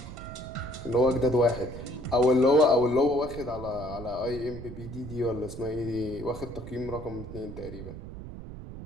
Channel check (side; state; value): right; noise; rumble, 11 dB below the sound